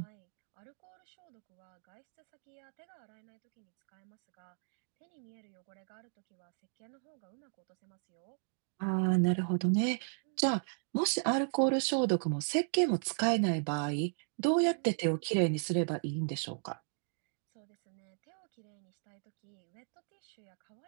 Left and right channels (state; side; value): silent; left; digital silence